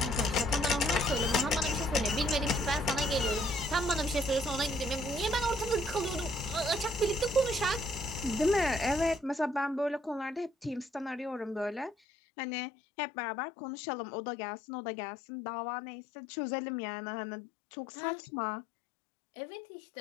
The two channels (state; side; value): drops out; right; at 12.0 s